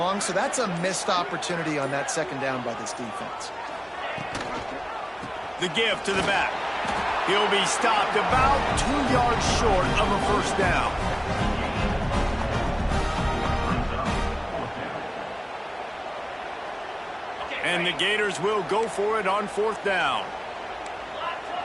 so that's a missed opportunity on that second down by this defense. The give to the back. He'll be stopped about 2 yards short of a first down. And the Gators will go for it on fourth down. Black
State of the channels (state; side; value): identical; both; correlation 1.00